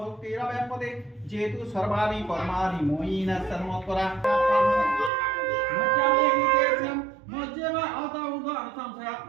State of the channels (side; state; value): left; drops out; at 5.1 s